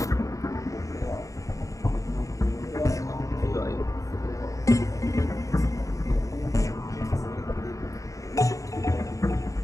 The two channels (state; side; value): late; right; 0.16 ms